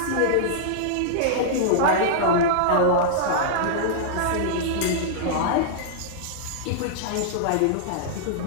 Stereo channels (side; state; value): both; different; correlation -0.02